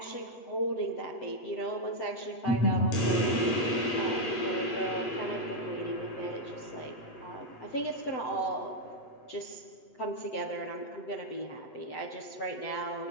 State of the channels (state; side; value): late; right; 8.0 ms